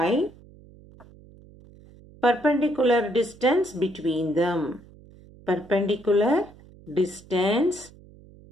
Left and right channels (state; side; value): noise; right; hum, 23 dB below the sound